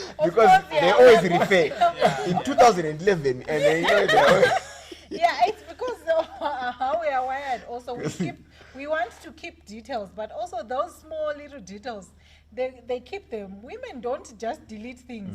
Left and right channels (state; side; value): identical; both; correlation 1.00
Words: because course, they yeah. always refer in 2011, and they know they always. Yeah, it's because of how we are wired. Also, we want to keep details, but also those small little details, they keep them. Women don't just delete